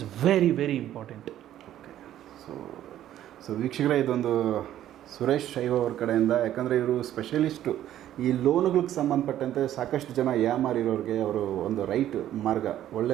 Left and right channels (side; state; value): left; quieter; 12.1 dB